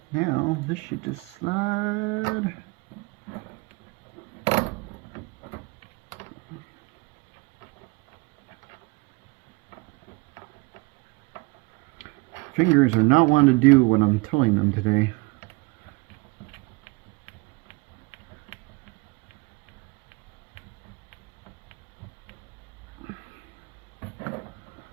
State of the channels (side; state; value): left; quieter; 26.7 dB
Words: Now this should just slide. Fingers are not wanting to do what I'm telling them today.